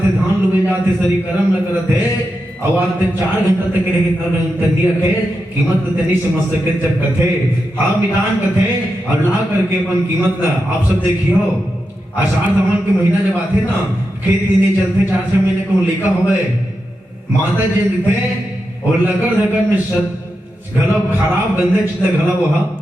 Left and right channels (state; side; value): normal; both; correlation 0.88